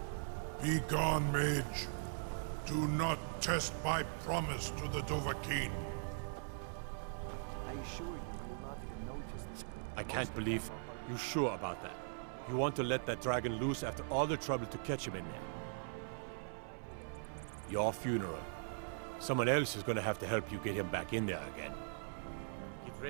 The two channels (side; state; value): left; silent; 51 dB below the other